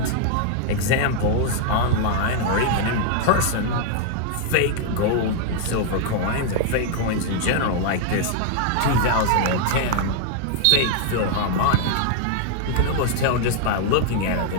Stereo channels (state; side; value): different; both; correlation 0.00